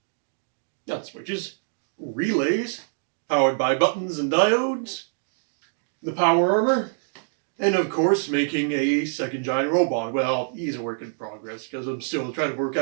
Not switches. Relays powered by buttons and diodes. The power armor. And of course, making a second giant robot. Well, he's a work in progress because I'm still trying to work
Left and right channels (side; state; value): left; silent; digital silence